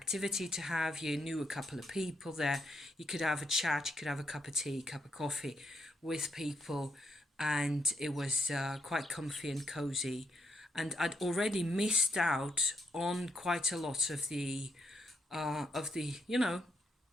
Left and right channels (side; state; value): both; normal; correlation 0.77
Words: to have. You knew a couple of people there. You could have a chat. You could have a cup of tea, cup of coffee with people, and it was quite comfy and cozy. And I'd already missed out on quite a lot of the